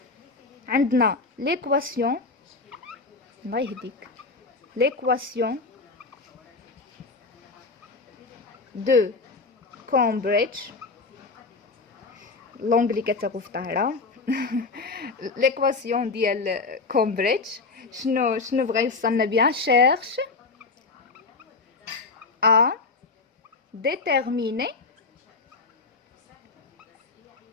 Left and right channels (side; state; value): right; quieter; 4.0 dB